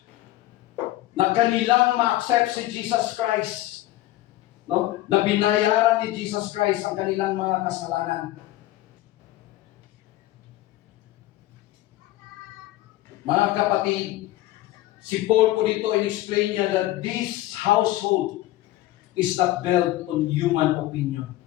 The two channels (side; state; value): right; quieter; 15.9 dB